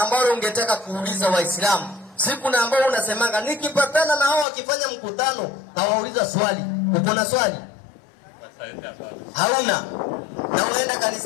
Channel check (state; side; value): drops out; right; at 4.5 s